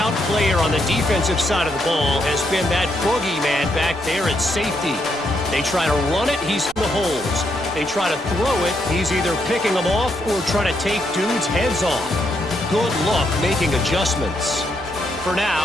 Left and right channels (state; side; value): noise; right; rumble, 24 dB below the sound